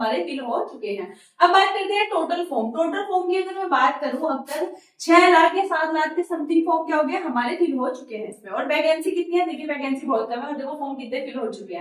फिल हो चुके हैं। अब बात करते हैं टोटल फॉर्म। टोटल फॉर्म की अगर मैं बात करूं, अब तक 6 लाख या 7 लाख के समथिंग फॉर्म क्या हो गया हमारे फिल हो चुके हैं इसमें। और वैकेंसी कितनी है, देखिए वैकेंसी बहुत कम है और देखो फॉर्म कितने फिल हो चुके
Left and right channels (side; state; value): both; identical; correlation 1.00